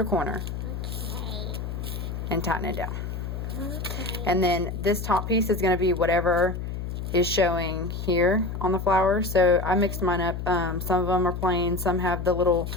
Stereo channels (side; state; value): left; noise; hum, 5 dB below the sound